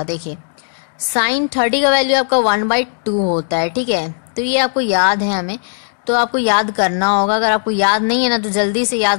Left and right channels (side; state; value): right; silent; 68 dB below the other